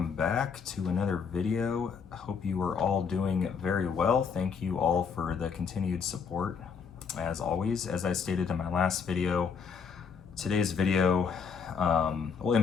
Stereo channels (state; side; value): quieter; right; 6.1 dB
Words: back to another video. I hope you are all doing very well. Thank you all for the continued support. As always, as I stated in my last video, today's video, well, in